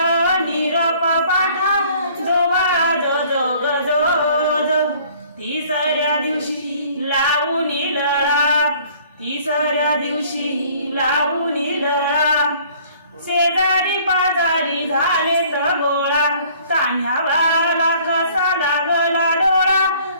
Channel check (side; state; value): both; inverted; correlation -0.55